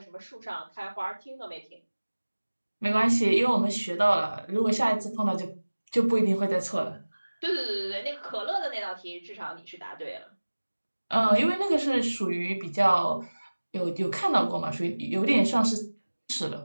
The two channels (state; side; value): inverted; both; correlation -1.00